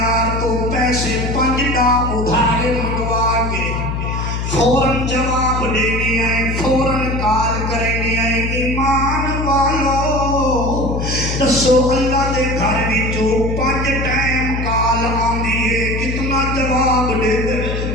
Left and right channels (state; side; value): noise; left; hum, 2 dB below the sound